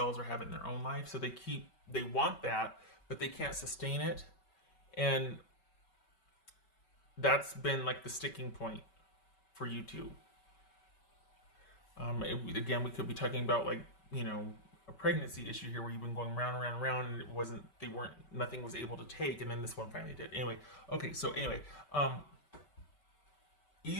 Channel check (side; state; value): right; late; 5.2 ms